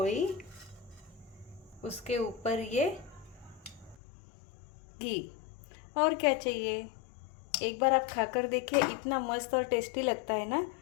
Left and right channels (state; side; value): drops out; right; at 4.0 s